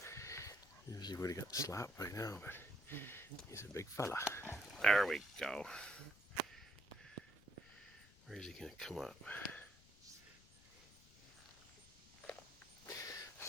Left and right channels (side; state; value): left; noise; rumble, 23 dB below the sound